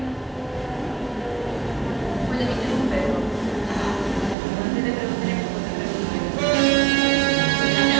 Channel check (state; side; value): drops out; left; at 4.4 s